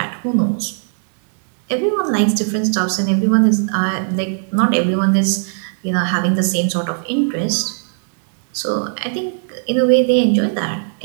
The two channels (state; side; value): silent; left; digital silence